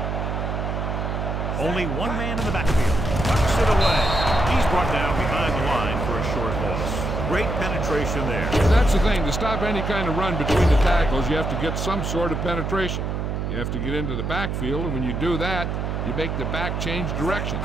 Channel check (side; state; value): right; noise; hum, 2 dB below the sound